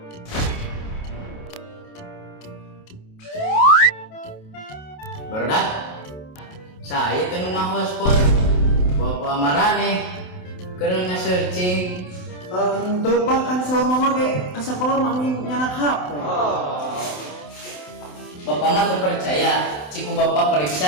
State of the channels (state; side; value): late; right; 27 ms